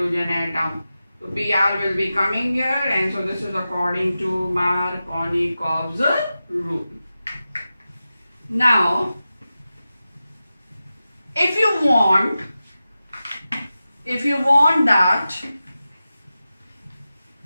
atom. So Br will be coming here, and so this is according to Markovnikov's rule. Now, if you want that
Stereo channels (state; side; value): inverted; both; correlation -0.93